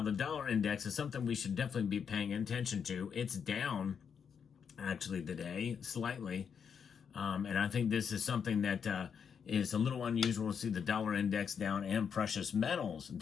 the dollar index is something we should definitely be paying attention to. It's down, actually, today, slightly. And I think this is something that is a little unusual to see the dollar index down and precious metals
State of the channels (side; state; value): right; quieter; 7.0 dB